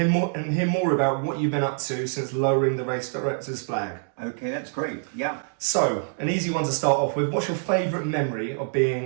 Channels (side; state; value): left; silent; digital silence